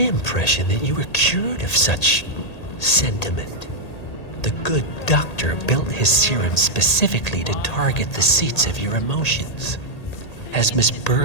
that you were cured of such sentiment. The good doctor built his serum specifically to target the seats of your emotions. Has Miss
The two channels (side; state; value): right; late; 1.8 ms